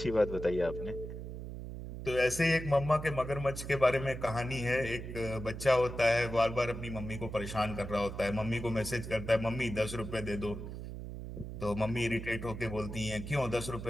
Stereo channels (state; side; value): noise; right; hum, 8 dB below the sound